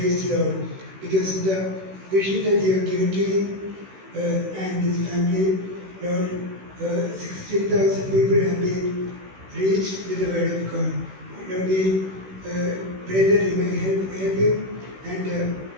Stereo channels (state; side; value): late; left; 16 ms